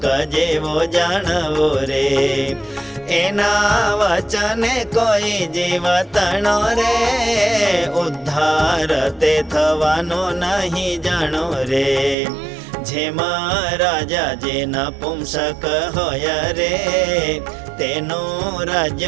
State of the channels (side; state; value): left; drops out; at 12.2 s